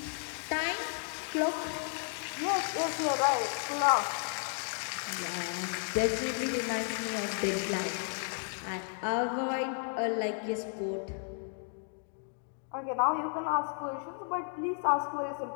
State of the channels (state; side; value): silent; right; 56 dB below the other